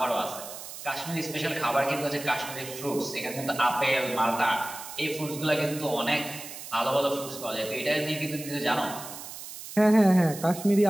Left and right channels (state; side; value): noise; right; hiss, 12 dB below the sound